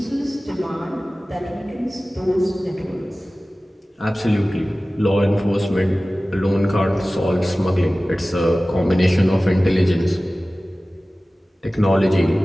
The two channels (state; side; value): normal; both; correlation 0.97